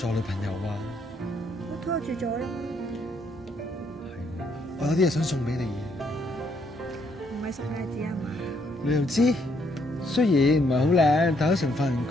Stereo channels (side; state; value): both; normal; correlation 0.72